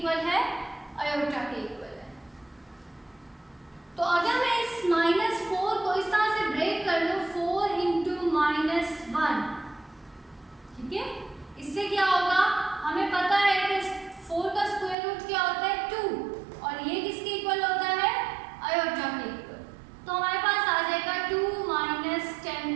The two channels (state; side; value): drops out; left; at 15.0 s